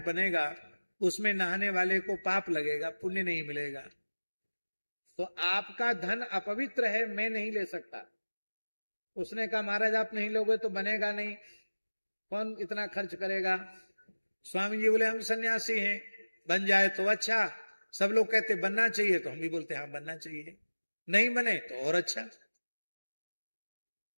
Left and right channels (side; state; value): both; inverted; correlation -1.00